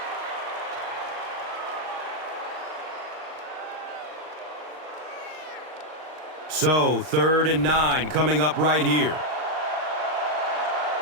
So, 3rd and 9 coming up right here.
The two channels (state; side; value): late; left; 38 ms